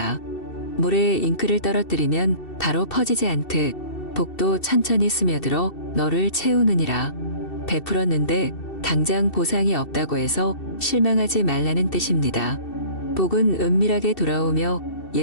물에 잉크를 떨어뜨리면 바로 퍼지지 않듯 복도 천천히 스며들어 너를 채우느니라. 베풀었는데 당장 보상이 없다고 해서 실망하지 말라는 뜻입니다. 복은 은밀하게 돌아오며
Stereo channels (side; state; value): right; late; 2.7 ms